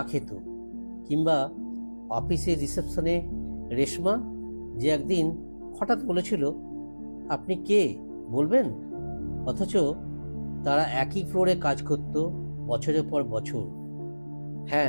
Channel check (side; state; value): both; inverted; correlation -1.00